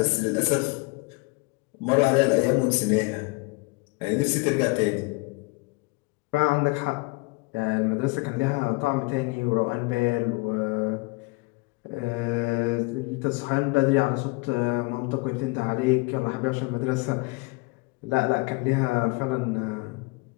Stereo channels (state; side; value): quieter; right; 27.1 dB